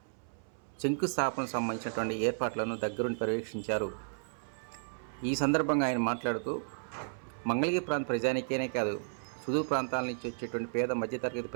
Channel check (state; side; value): silent; left; 56 dB below the other